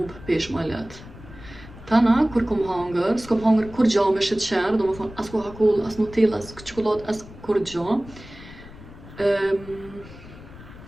pesh ma let. Tana, kur kom hangër, s'kom hangër kur gja me sheqer, do me thonë as Coca-Cola, as Nutella, as çokoladë, as kur gja.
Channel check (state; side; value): noise; left; rumble, 17 dB below the sound